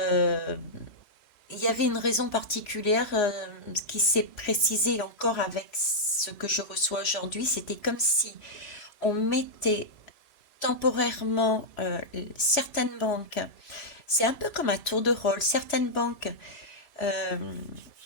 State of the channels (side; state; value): right; late; 3.1 ms